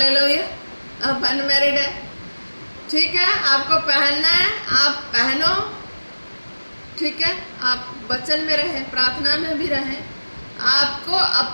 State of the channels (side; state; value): both; inverted; correlation -1.00